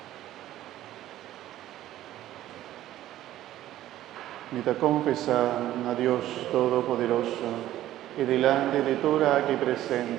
Me da confesar a Dios Todopoderoso y delante de toda aquí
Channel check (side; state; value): left; quieter; 13.7 dB